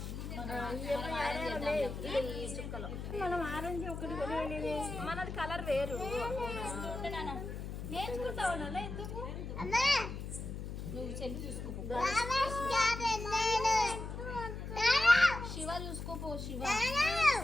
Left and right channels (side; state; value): left; noise; hum, 7 dB below the sound